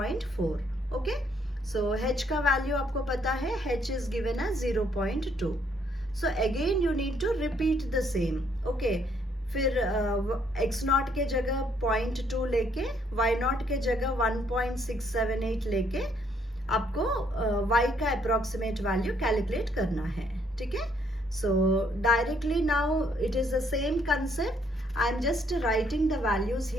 Okay. So h का value आपको पता है, h is given as 0.2. So again you need to repeat the same. Okay. फिर x not के जगह 0.2 लेके y not के जगह 1.678 लेके आपको y का अप्रोक्सीमेट वैल्यू कैलकुलेट करना है। ठीक है, सो directly now it is the same concept. I am just writing the values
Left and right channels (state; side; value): normal; both; correlation 0.68